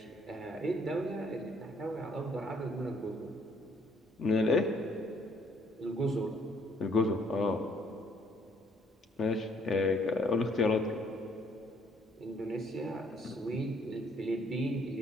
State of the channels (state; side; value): normal; both; correlation 0.65